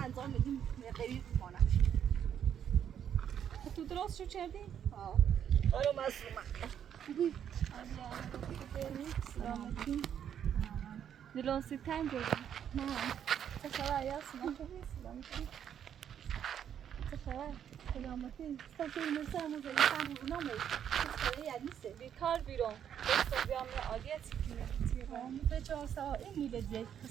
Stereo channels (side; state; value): left; quieter; 9.1 dB